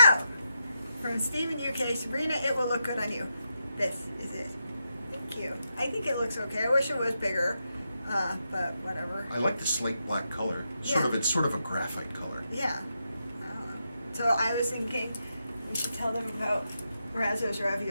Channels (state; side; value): inverted; both; correlation -0.85